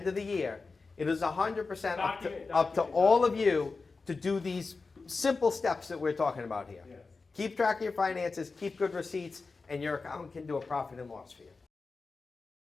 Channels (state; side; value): quieter; right; 4.1 dB